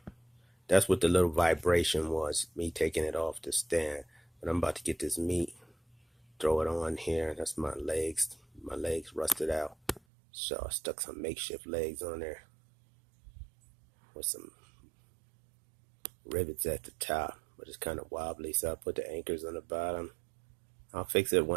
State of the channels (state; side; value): drops out; left; at 10.0 s